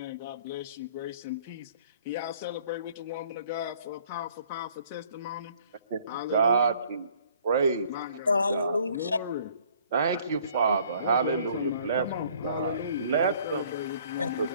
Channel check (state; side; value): inverted; both; correlation -0.57